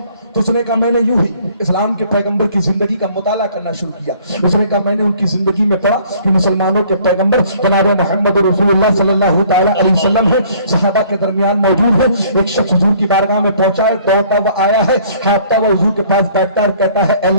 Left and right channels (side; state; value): both; inverted; correlation -0.57